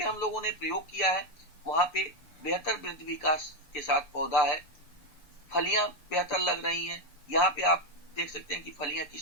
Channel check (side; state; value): right; late; 6.9 ms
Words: हम लोगों ने प्रयोग किया है वहां पे बेहतर वृद्धि विकास के साथ पौधा है, फलियां बेहतर लग रही हैं। यहाँ पे आप देख सकते हैं कि फलियां